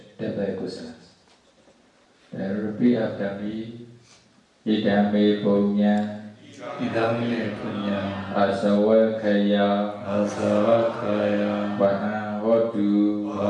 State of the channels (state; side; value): identical; both; correlation 1.00